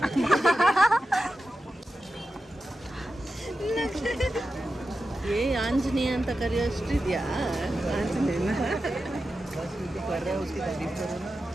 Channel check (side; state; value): both; normal; correlation 0.91